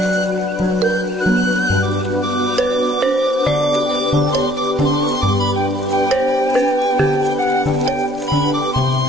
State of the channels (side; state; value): both; normal; correlation 0.59